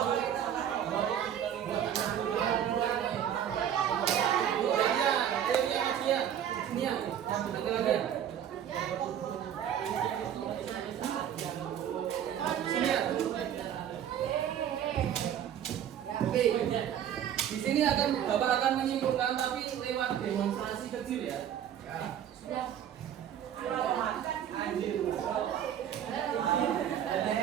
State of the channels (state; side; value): quieter; left; 9.7 dB